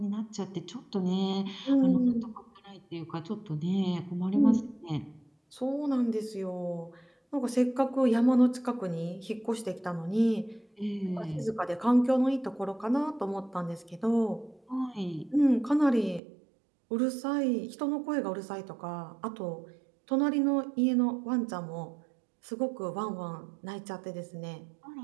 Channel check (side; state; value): left; drops out; at 16.2 s